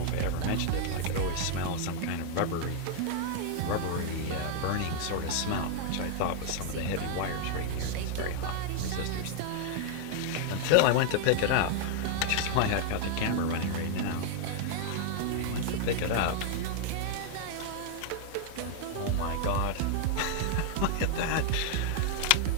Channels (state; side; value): different; both; correlation 0.00